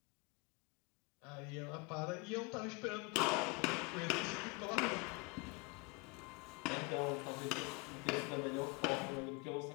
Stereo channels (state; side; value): quieter; right; 27.5 dB